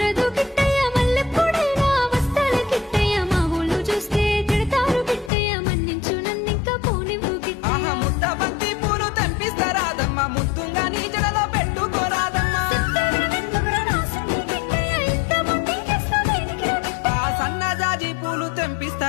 కిట్టయ్య, మల్లెప్పుడైనా వస్తాల కిట్టయ్య, మా ఊళ్ళు చూస్తే తిడతారు కిట్టయ్య, మన్నించు నన్నింకా పోనివ్వు కిట్టయ్య. ముద్ద బంతి పూలు తెంపిస్తా రాదమ్మ, ముత్తుంగా నీ జడలో పెట్టుకోరాదమ్మ. ఆ సన్నజాజి పూలు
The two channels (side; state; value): right; drops out; at 5.3 s